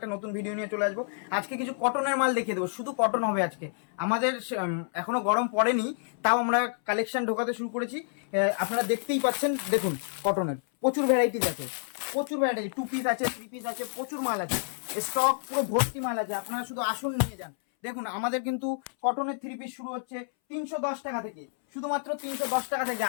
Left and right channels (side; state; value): right; silent; 59 dB below the other